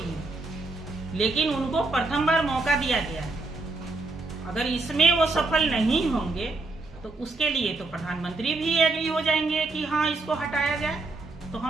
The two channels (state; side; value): quieter; left; 3.4 dB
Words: हैं, लेकिन उनको प्रथम बार मौका दिया गया है। अगर इसमें वो सफल नहीं होंगे तो उसके लिए तो प्रधानमंत्री भी एग्री हो जाएंगे कि हाँ, इसको हटाया जाए। तो